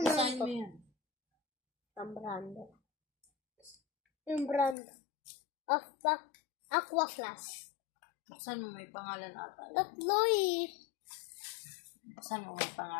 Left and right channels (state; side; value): drops out; right; at 4.8 s